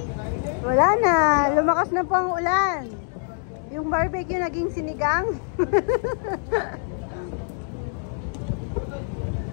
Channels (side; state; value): right; silent; 62 dB below the other